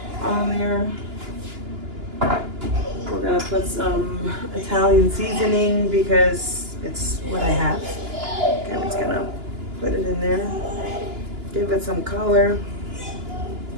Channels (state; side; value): late; left; 2.9 ms